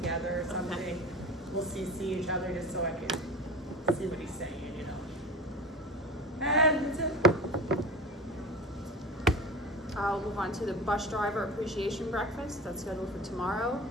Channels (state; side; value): normal; both; correlation 0.32